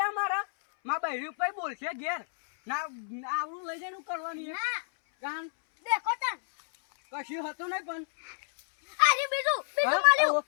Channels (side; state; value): right; silent; 58 dB below the other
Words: મારા. માં બહેરી ઉપર બોલશે ઘેર ના આવડું લઈ જઈને કરવાની ના કાન દેખો તન કશું હતું નહીં પણ અરે બીજું માલ્યું